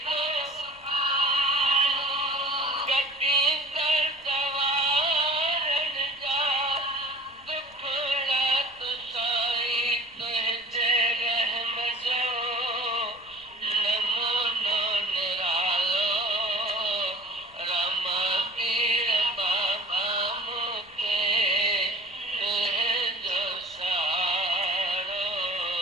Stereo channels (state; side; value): noise; left; rumble, 29 dB below the sound